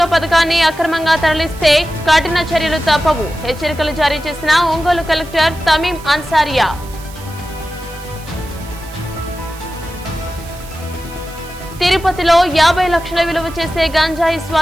పథకాన్ని అక్రమంగా తరలిస్తే కఠిన చర్యలు తప్పవు. హెచ్చరికలు జారీ చేసిన ఒంగోలు కలెక్టర్ తమీం అన్సారియా. తిరుపతిలో 50 లక్షల విలువ చేసే గంజాయి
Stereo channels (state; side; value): noise; right; hiss, 19 dB below the sound